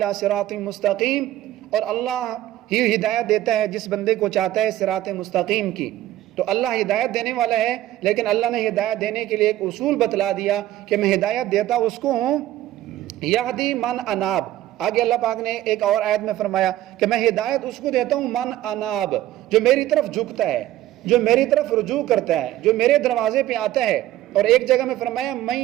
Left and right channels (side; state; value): left; quieter; 14.2 dB